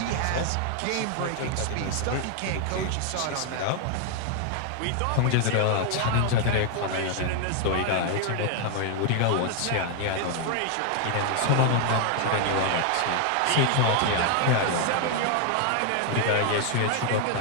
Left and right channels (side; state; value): both; different; correlation 0.00